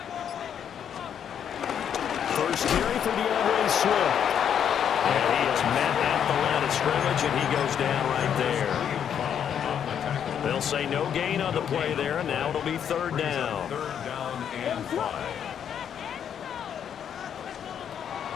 First carry for DeAndre Swift. And he is met at the line of scrimmage, and he goes down right there. They'll say no gain on the play there, and now it'll be third down. Third down and 5.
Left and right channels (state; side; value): quieter; right; 8.6 dB